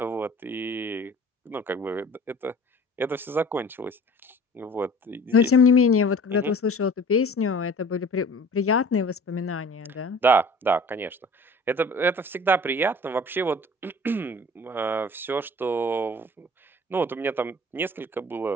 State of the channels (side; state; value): both; normal; correlation 0.46